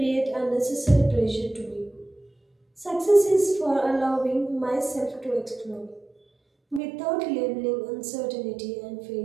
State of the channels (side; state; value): left; drops out; at 6.8 s